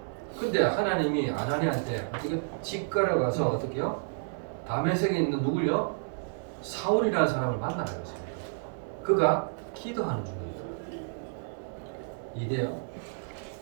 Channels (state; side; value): silent; left; 58 dB below the other